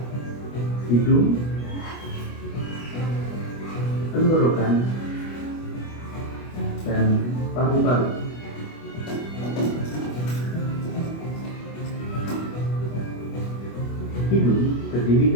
hidung, tenggorokan, dan paru-paru. Hidung terdiri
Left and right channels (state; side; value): late; right; 25 ms